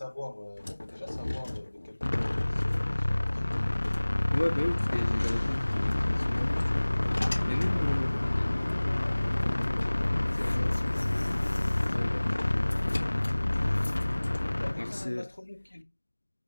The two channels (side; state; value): both; inverted; correlation -1.00